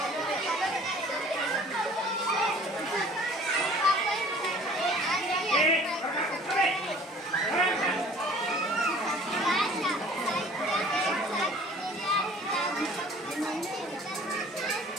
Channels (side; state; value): both; normal; correlation 0.50